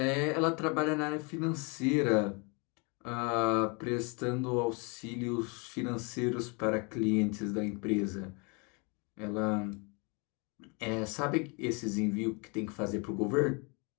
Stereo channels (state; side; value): quieter; right; 31.8 dB